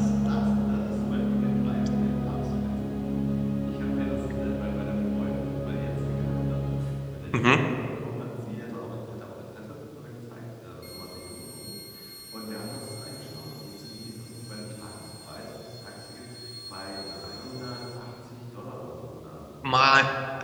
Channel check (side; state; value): both; identical; correlation 1.00